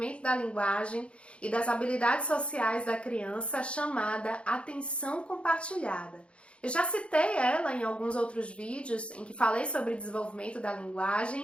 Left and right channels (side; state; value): right; late; 0.059 ms